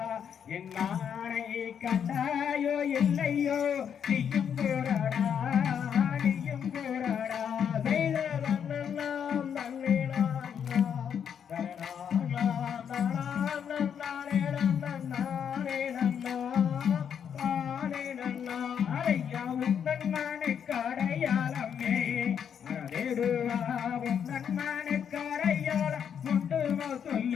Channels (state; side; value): quieter; right; 8.0 dB